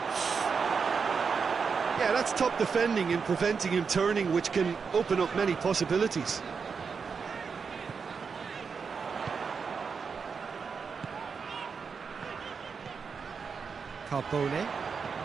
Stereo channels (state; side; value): quieter; left; 5.6 dB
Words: Yeah, that's top defending and preventing him turning, which can open up many possibilities. Carbone.